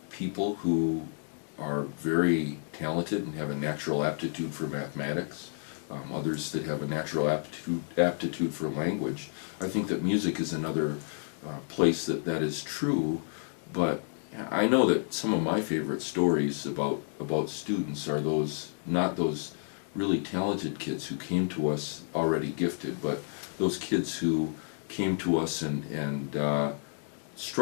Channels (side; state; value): right; silent; 57 dB below the other